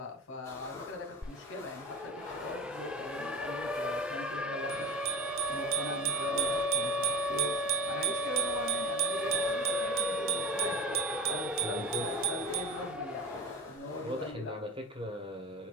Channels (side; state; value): both; normal; correlation 0.28